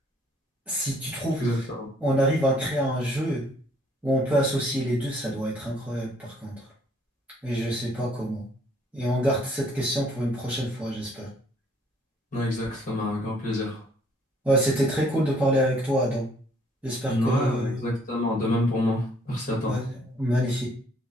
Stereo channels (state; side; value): normal; both; correlation 0.63